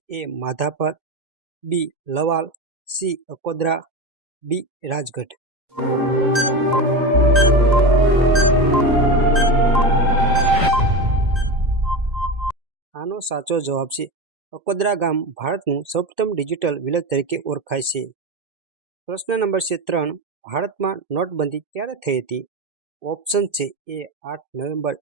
એ માધાપર, બી લવાલ, સી અકોદરા, ડી રાજગઢ. આનો સાચો જવાબ છે અકોદરા ગામ ભારતનું સૌપ્રથમ ડિજિટલ વિલેજ તરીકે ઓળખાય છે. પ્રશ્ન નંબર 3. ભારતમાં નોટબંધી ક્યારે થઈ હતી? ઓપ્શન છે A 8 November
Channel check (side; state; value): left; late; 2.1 ms